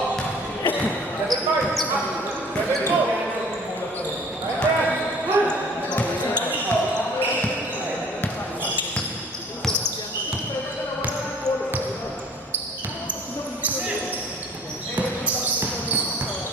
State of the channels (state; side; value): normal; both; correlation 0.50